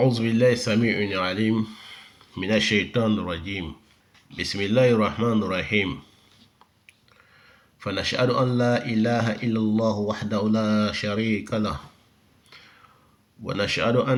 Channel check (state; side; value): identical; both; correlation 1.00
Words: بالله السميع العليم من الشيطان الرجيم. بسم الله الرحمن الرحيم. فنشهد أن لا إله إلا الله وحده لا شريك له، ونشهد